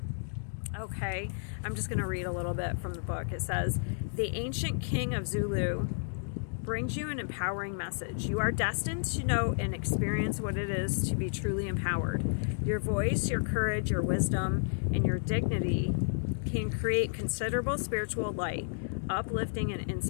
Okay, I'm just going to read a little bit from the book. It says, the ancient king of Zulu brings you an empowering message. You are destined to know and experience what it is to be truly empowered. Your voice, your courage, your wisdom, and your dignity can create considerable spiritual light, uplifting and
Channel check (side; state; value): right; silent; digital silence